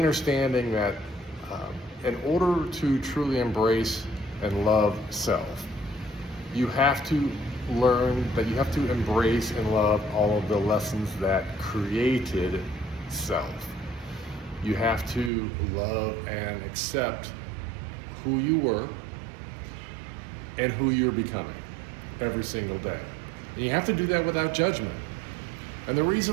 that in order to truly embrace and love self, you have to learn that you have to embrace and love all of the lessons that created self. You have to love and accept who you were and who you're becoming every single day. And you have to do that without judgment. And the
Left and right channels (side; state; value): left; drops out; at 15.3 s